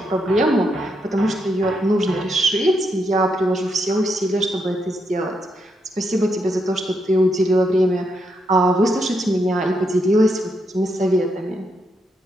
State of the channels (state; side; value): normal; both; correlation 0.80